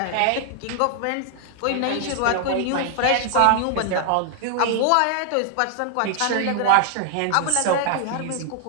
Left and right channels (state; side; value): different; both; correlation 0.00